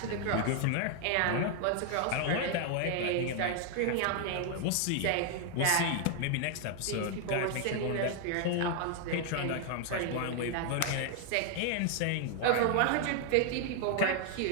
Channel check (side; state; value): both; different; correlation 0.00